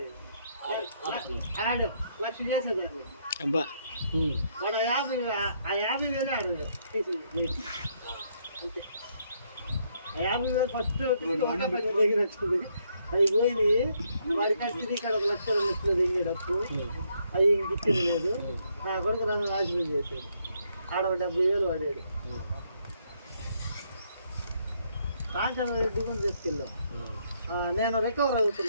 ఆడాం 1,00,000 చేసేదాన్ని వాడు 50,000 ఆడదు అంతే 50,000 ఫస్ట్ ఒకటే పని దగ్గరట్టుంది అవి పోయినాయి వాడికి తిరిగి ఇక్కడ 1,00,000 2,00,000 దిగేటప్పుడు అవి ఇంక ఇచ్చింది లేదు నా కొడుకు నన్ను నాశనం చేశాడు ఆడ 70,000 వాడాడు కాంచన రెడ్డి కూడా తీసుకెళ్ళాం నేను రికవర్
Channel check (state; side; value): inverted; both; correlation -0.73